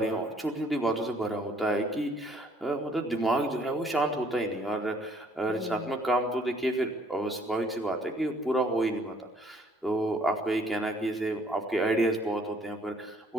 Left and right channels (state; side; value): normal; both; correlation 0.62